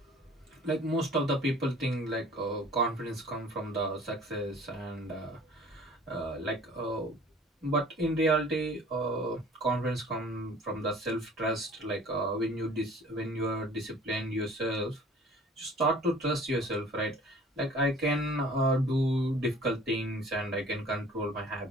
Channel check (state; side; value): normal; both; correlation 0.49